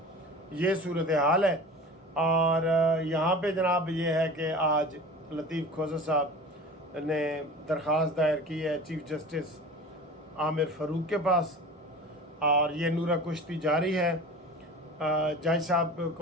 یہ صورتحال ہے۔ اور یہاں پہ جناب یہ ہے کہ آج لطیف کھوسہ صاحب نے درخواست دائر کی ہے چیف جسٹس عامر فاروق کے پاس، اور یہ نورہ کشتی جاری ہے۔ جج صاحب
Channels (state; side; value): normal; both; correlation 0.37